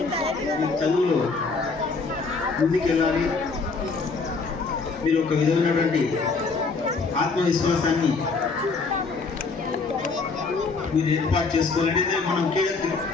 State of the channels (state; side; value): quieter; right; 4.3 dB